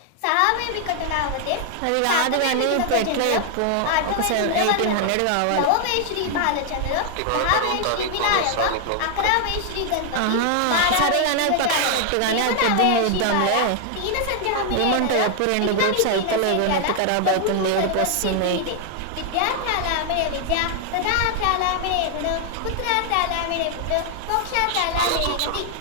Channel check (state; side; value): different; both; correlation 0.00